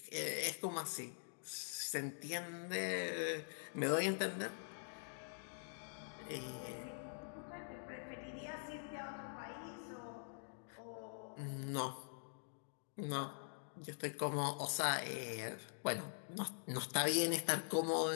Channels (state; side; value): silent; right; digital silence